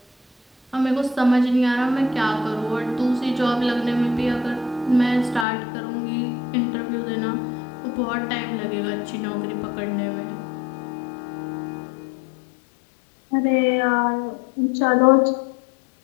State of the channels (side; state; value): right; drops out; at 5.5 s